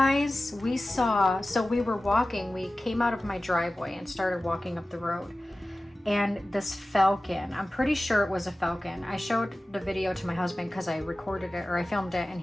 we saw, so we were walking, we came out of my driveway and started walking up the road. and this falcon, I'm pretty sure it was a falcon. I showed the video to my husband because I recorded it, or I filmed it, and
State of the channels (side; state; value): both; normal; correlation 0.96